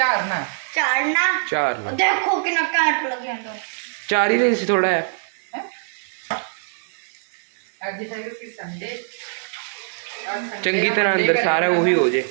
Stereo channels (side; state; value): left; silent; digital silence